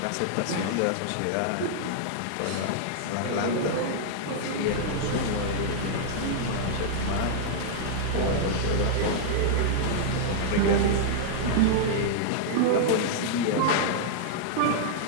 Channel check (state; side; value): different; both; correlation -0.02